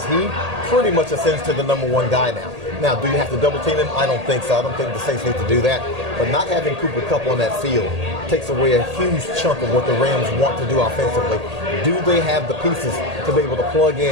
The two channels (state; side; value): late; left; 1.8 ms